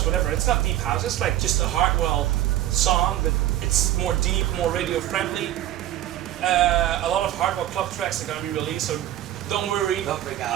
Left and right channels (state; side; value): quieter; left; 13.3 dB